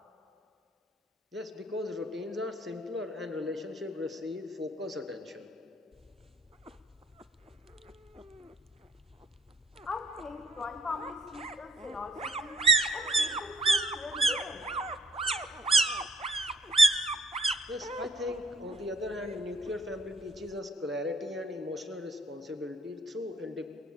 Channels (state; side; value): normal; both; correlation 0.64